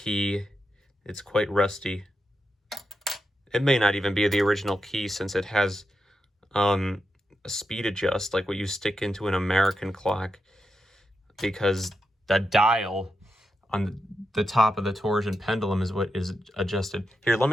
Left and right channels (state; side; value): normal; both; correlation 0.87